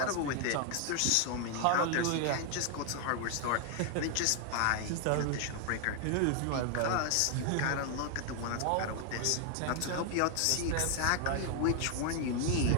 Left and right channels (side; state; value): both; different; correlation 0.00